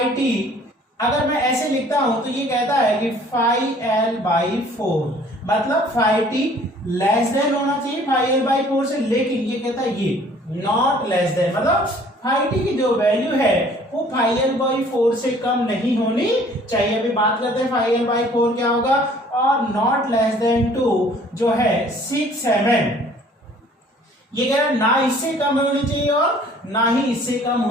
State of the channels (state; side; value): normal; both; correlation 0.54